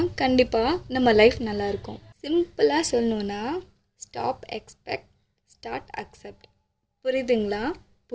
கண்டிப்பாக நம்ம லைஃப் நல்லாயிருக்கும். சிம்பிளாக சொல்லணுன்னா ஸ்டாப் எக்ஸ்பெக்ட், ஸ்டார்ட் அக்செப்ட். புரியுதுங்களா?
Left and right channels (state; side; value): identical; both; correlation 1.00